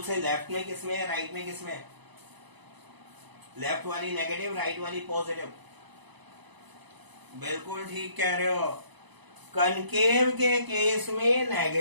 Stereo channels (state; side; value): late; left; 1.0 ms